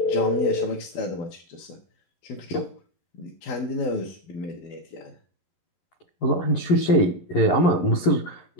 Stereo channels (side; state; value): right; late; 11 ms